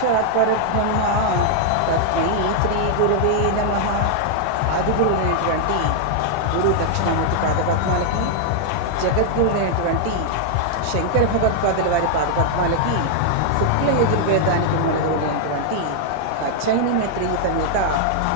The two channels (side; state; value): both; different; correlation 0.00